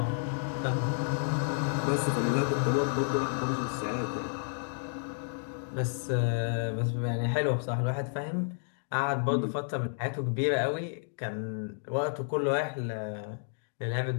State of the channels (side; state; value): right; silent; digital silence